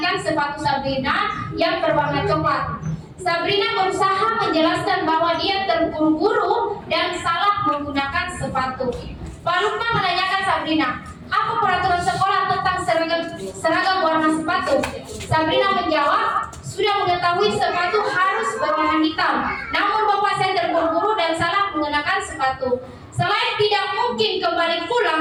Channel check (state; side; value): identical; both; correlation 1.00